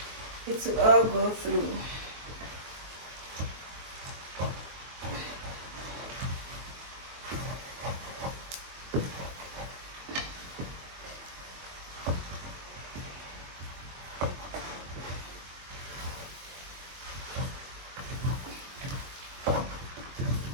It will all go through.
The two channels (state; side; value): late; left; 23 ms